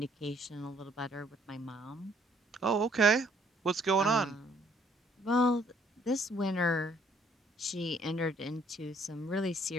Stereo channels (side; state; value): both; normal; correlation 0.64